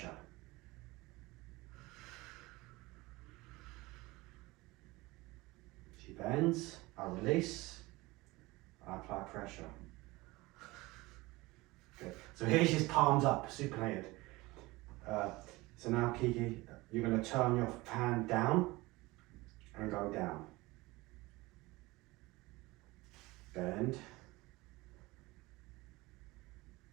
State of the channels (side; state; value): left; quieter; 21.3 dB